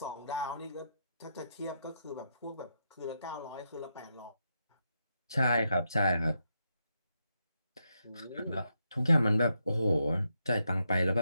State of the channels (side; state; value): both; inverted; correlation -0.83